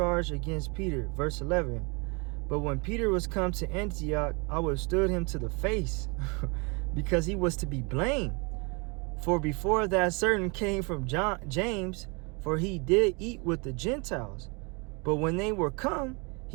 against Peter, verse 11. But when Peter was come to Antioch, I withstood him to the face, because he was to be blamed. For before that certain came from James, for he did eat with the Gentiles. But when they were come,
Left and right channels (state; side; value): quieter; left; 31.2 dB